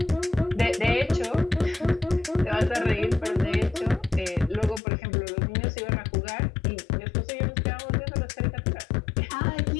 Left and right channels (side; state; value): right; drops out; at 4.8 s